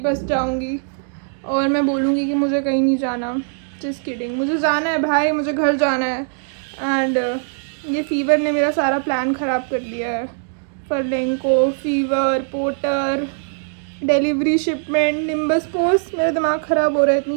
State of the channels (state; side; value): silent; left; digital silence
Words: बस जाऊँगी और मैं बोलूँगी कि मुझे कहीं नहीं जाना। जस्ट किडिंग, मुझे जाना है भाई, मुझे घर जाना है। एंड ये फीवर ने मेरा सारा प्लान ख़राब कर दिया है। फर्लेंको, फीवर, Porter, delivery, shipment, Nimbus Post, मेरा दिमाग ख़राब हो रहा है